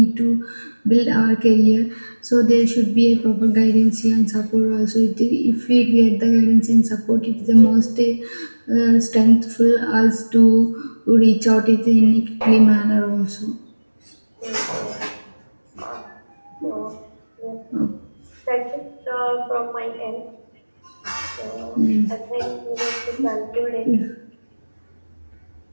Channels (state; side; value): inverted; both; correlation -1.00